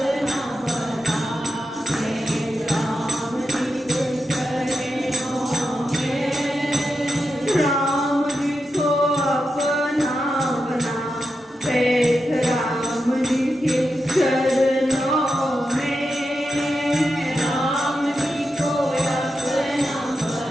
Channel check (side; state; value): both; normal; correlation 0.88